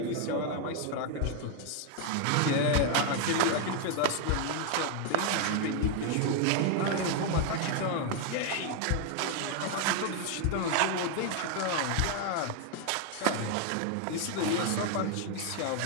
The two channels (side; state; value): both; different; correlation 0.01